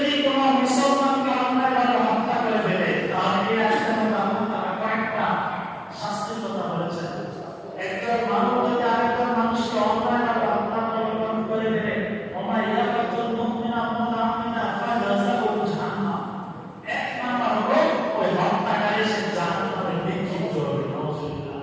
কোনো মুসলমানকে অন্যায়ভাবে হত্যা করে ফেলে তাহলে এই আয়াতের মধ্যে আল্লাহ তাআলা কয়েকটা শাস্তির কথা বলেছেন। একজন মানুষ যদি আরেকজন মানুষকে অন্যায়ভাবে হত্যা করে ফেলে ওমা ইয়াকাতুল মুমিনা মুতাআকিদা ফাজাযাউ জাহান্নাম, এক নাম্বার হলো ওই হত্যাকারী সে জাহান্নামে নিক্ষিপ্ত হবে। নাউযুবিল্লাহ।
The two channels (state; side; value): identical; both; correlation 1.00